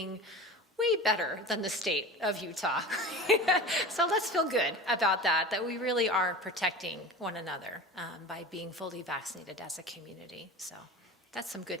way better than the state of Utah. So let's feel good about that we really are protecting one another by being fully vaccinated as a community. So that's some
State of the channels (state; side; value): normal; both; correlation 0.33